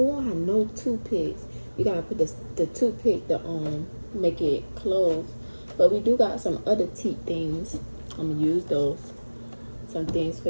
I know toothpicks. You gotta put the toothpick to make it close. But we do got some other teeth things. I'm gonna use those. Some things for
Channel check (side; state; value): both; inverted; correlation -1.00